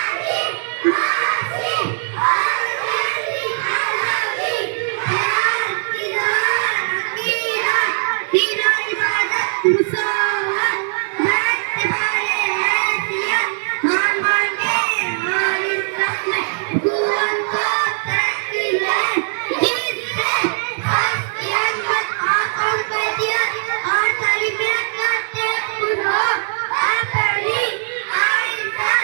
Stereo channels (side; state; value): left; silent; 66 dB below the other